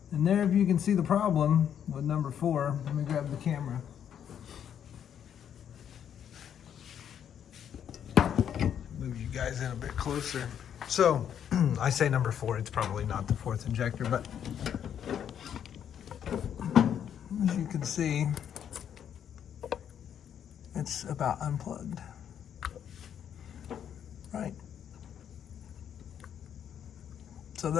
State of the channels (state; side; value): quieter; right; 9.0 dB